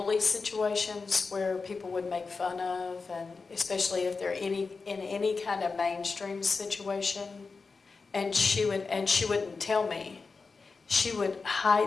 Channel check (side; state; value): right; quieter; 4.5 dB